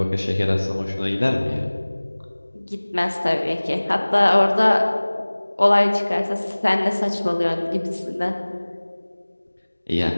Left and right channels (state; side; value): inverted; both; correlation -1.00